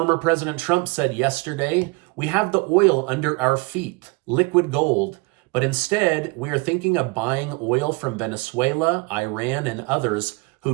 President Trump said yesterday, we have the oil under our feet, liquid gold, but instead we are thinking of buying oil from Venezuela, Iran, and others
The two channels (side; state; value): left; quieter; 26.0 dB